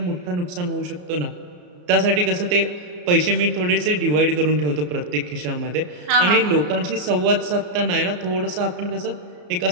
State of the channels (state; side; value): late; left; 34 ms